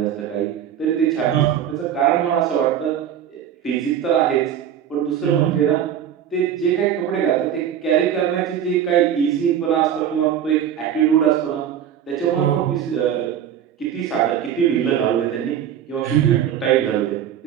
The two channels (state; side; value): quieter; left; 9.5 dB